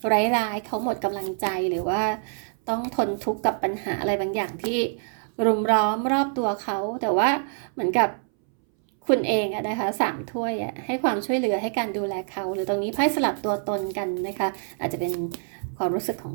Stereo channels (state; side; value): silent; left; 61 dB below the other